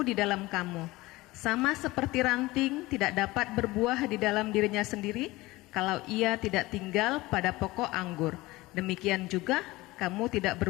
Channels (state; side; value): quieter; right; 20.0 dB